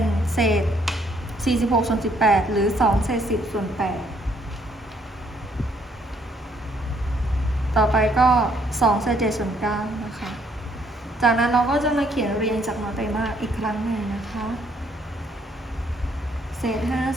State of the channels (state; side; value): normal; both; correlation 0.68